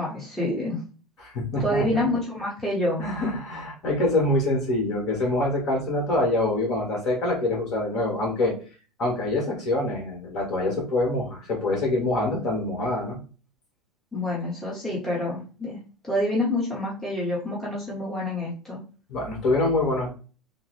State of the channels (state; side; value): normal; both; correlation 0.36